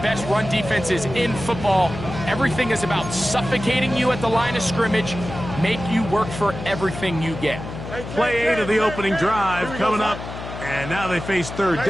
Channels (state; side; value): noise; left; hum, 10 dB below the sound